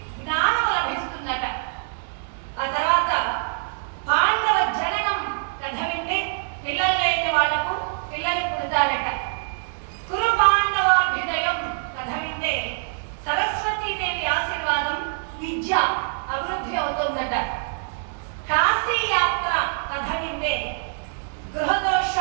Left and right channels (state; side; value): silent; left; digital silence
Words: జ్ఞానం లభిస్తుందట. ఆ తర్వాత పాండవ జననం కథ వింటే పిల్లలు లేని వాళ్లకు పిల్లలు పుడతారట. కురు పాండవాభ్యుదయం కథ వింటే సరస్వతీదేవి ఆశీర్వాదం, విద్య అభివృద్ధి అవుతుందట. కాశీ యాత్ర కథ వింటే